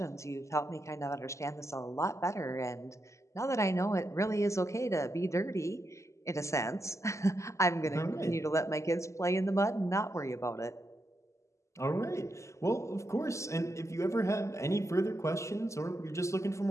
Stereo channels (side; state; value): right; late; 0.14 ms